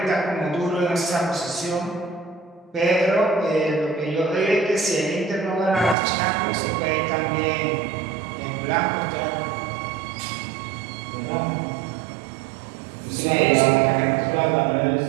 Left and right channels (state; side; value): drops out; left; at 6.0 s